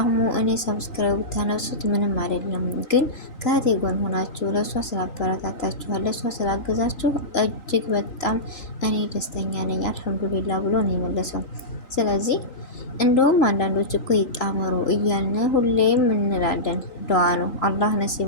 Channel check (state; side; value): late; right; 3.9 ms